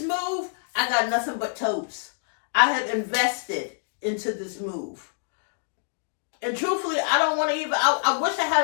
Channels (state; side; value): silent; right; digital silence